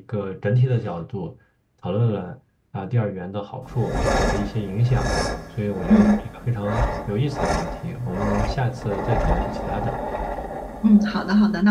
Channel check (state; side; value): identical; both; correlation 1.00